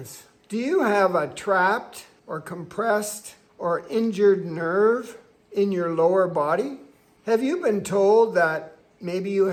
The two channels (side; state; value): both; identical; correlation 1.00